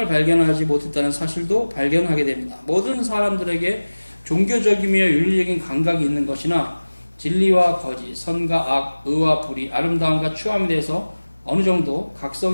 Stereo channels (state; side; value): inverted; both; correlation -1.00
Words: 발견하지 못했다는 사실도 발견하게 됩니다. 모든 사람들에게 종교적이며 윤리적인 감각이 있는 것이나 진리와 거짓, 선과 악, 의와 불의, 아름다움과 추함에 대해서 어느 정도